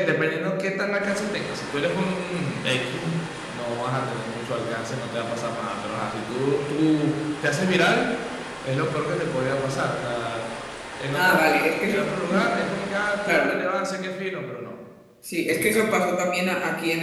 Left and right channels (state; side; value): identical; both; correlation 1.00